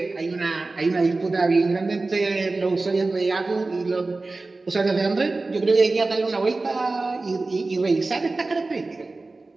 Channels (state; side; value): quieter; left; 3.4 dB